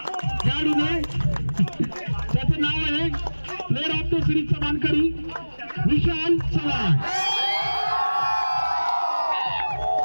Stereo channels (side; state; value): both; inverted; correlation -1.00